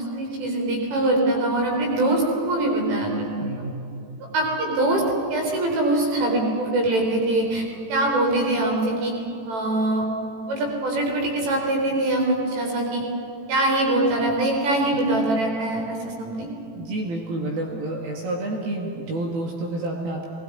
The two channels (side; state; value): left; late; 18 ms